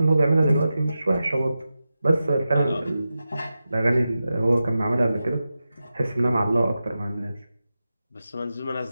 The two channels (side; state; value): both; inverted; correlation -0.92